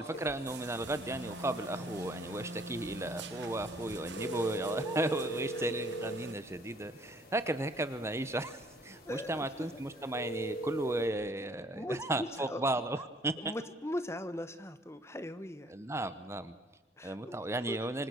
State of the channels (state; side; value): normal; both; correlation 0.59